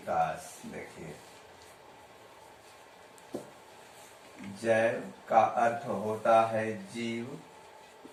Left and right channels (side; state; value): both; identical; correlation 1.00